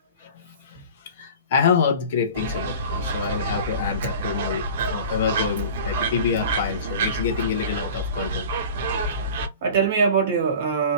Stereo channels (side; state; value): both; inverted; correlation -0.39